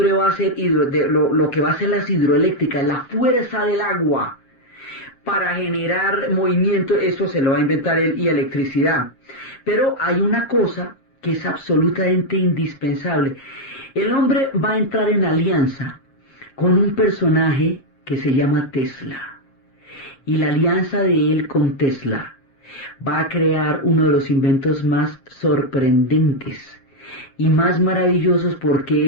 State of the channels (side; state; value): right; late; 7.4 ms